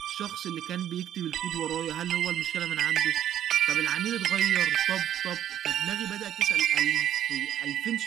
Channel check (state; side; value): quieter; left; 10.9 dB